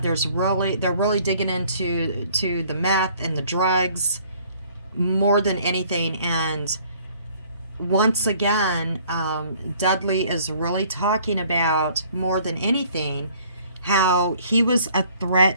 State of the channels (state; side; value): inverted; both; correlation -0.58